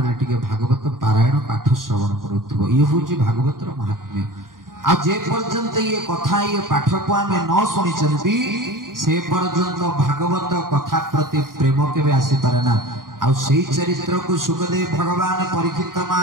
रे टिके भागवत पारायण पाठ श्रवण करूथबो ये होची भागवतर महात्म्य आ जे पर्यंत ये कथा ये पाठ को आमे न सुनि चंती से पर्यंत भागवत कथा प्रति प्रेम केबे आसी पारे ना आ सेही चरित्र को सुखदेव भगवान परीक्षित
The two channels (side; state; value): left; late; 0.91 ms